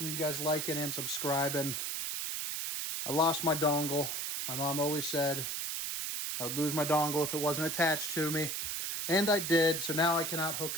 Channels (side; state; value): right; noise; hiss, 2 dB below the sound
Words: you guys liking and subscribing. I lost my dongle. My mom always said I would lose my dongle if it wasn't attached to me. And I did, so now I cannot hook